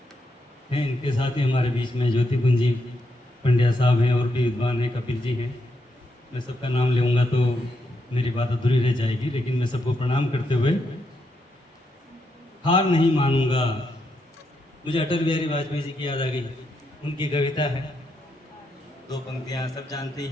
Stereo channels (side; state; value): both; normal; correlation 0.81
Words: हैं। इनके साथ ही हमारे बीच में ज्योति कुंजी पंड्या साहब हैं और भी विद्वान हैं, कपिल जी हैं। मैं सबका नाम लूँगा तो मेरी बात अधूरी रह जाएगी, लेकिन मैं सबको प्रणाम करते हुए हार नहीं मानूंगा। मुझे अटल बिहारी वाजपेयी जी की याद आ गई। उनकी कविता है, 2 पंक्तियाँ सब जानते